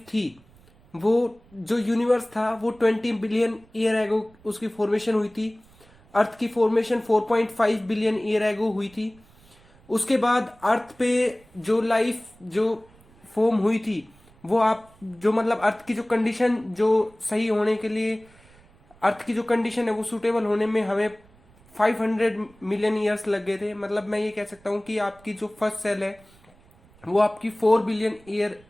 थी, वो जो यूनिवर्स था वो 20 बिलियन ईयर एगो उसकी फॉर्मेशन हुई थी. अर्थ की फॉर्मेशन 4.5 बिलियन ईयर एगो हुई थी. उसके बाद अर्थ पे जो लाइफ जो फॉर्म हुई थी वो आप जो मतलब अर्थ की जो कंडीशन जो सही होने के लिए, अर्थ की जो कंडीशन है वो सूटेबल होने में हमें 500 मिलियन ईयर्स लग गए थे. मतलब मैं ये कह सकता हूँ कि आपकी जो फर्स्ट सेल है वो आपकी 4 बिलियन ईयर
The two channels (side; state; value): right; noise; rumble, 28 dB below the sound